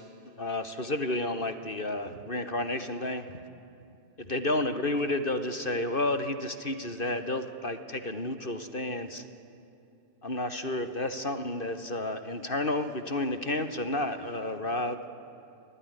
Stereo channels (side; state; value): right; late; 2.6 ms